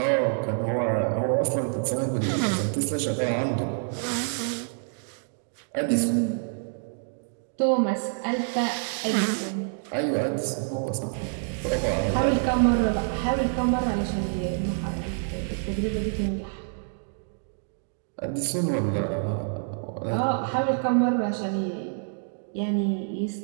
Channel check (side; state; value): left; silent; digital silence